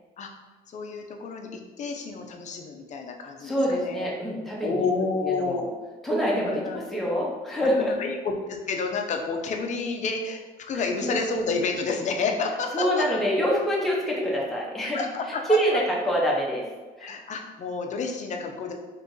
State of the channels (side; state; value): both; normal; correlation 0.50